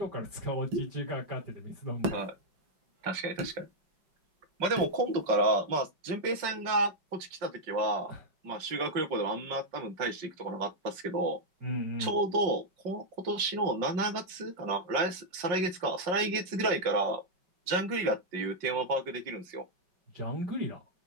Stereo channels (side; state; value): left; late; 5.6 ms